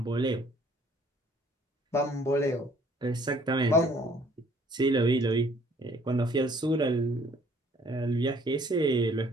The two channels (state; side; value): normal; both; correlation 0.59